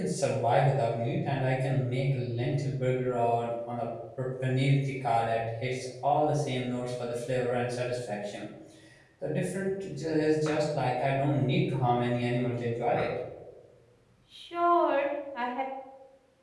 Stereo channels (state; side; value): identical; both; correlation 1.00